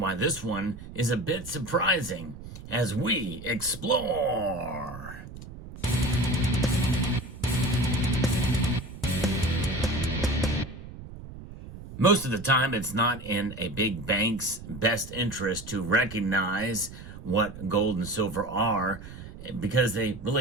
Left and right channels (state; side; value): noise; right; rumble, 14 dB below the sound